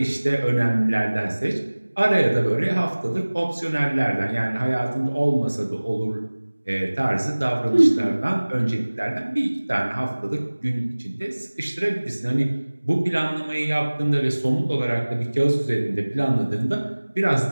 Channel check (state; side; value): inverted; both; correlation -1.00